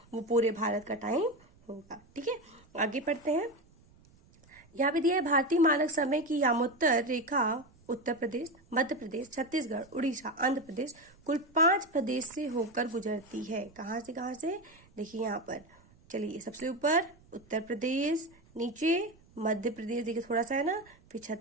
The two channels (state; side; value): noise; right; rumble, 28 dB below the sound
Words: वो पूरे भारत का टाइम होगा। ठीक है, आगे पढ़ते हैं। यहाँ पे दिया है भारतीय मानक समय की यामोत्तर रेखा उत्तर प्रदेश, मध्य प्रदेश, छत्तीसगढ़, उड़ीसा, आंध्र प्रदेश कुल 5 प्रदेश से होकर गुजरती है। कहाँ से कहाँ से? देखिए यहाँ पर, चलिए सबसे ऊपर उत्तर प्रदेश, नीचे मध्य प्रदेश देखिए थोड़ा सा है ना, फिर